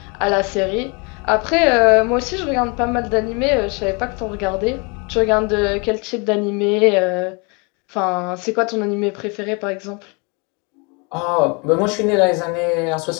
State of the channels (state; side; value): quieter; right; 31.6 dB